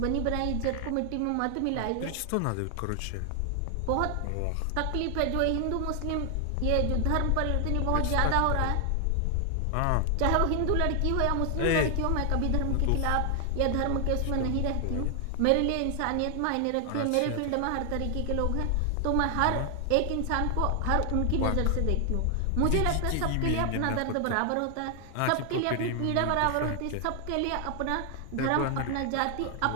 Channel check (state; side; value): different; both; correlation 0.00